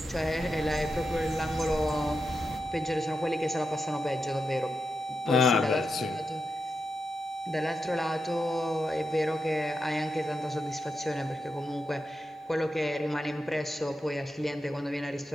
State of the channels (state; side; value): normal; both; correlation 0.87